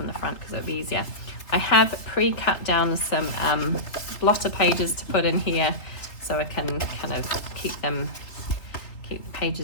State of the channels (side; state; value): right; late; 3.5 ms